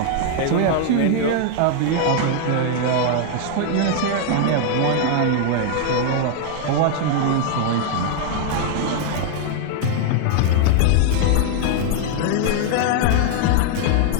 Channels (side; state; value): both; different; correlation 0.00